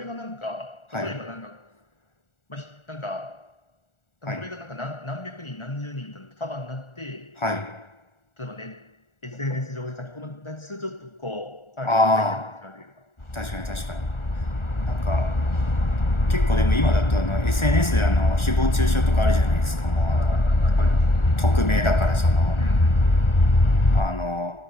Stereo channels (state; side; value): late; right; 1.4 ms